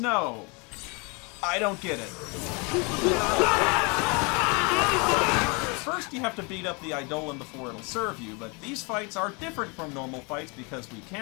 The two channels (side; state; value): right; quieter; 31.1 dB